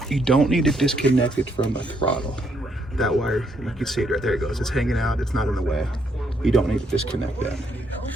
You don't need to disconnect it from the throttle. That wire, you can see it right there, it goes. It's hanging out, it's not in the way. You don't need to disconnect that.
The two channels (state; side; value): normal; both; correlation 0.73